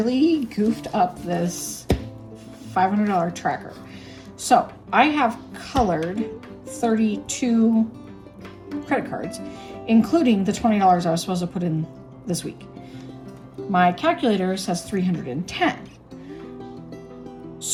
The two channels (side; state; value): both; identical; correlation 1.00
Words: goofed up this $500 tracker. So I have colored 32 credit cards, including the $20 I was supposed to put in this week. My calculator says 310.